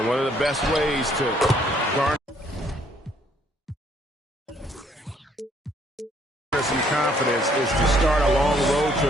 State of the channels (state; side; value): normal; both; correlation 0.65